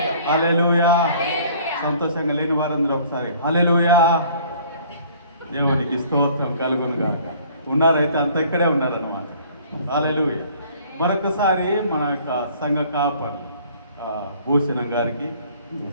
హల్లెలూయా. సంతోషంగా లేని వారందరూ ఒకసారి హల్లెలూయా. దేవునికి స్తోత్రం కలుగునుగా. ఉన్నారైతే అంత ఇక్కడే ఉన్నారన్నమాట. హల్లెలూయా. మరొకసారి మన యొక్క సంఘ కాపర్ భూషణం గారికి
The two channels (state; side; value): inverted; both; correlation -0.54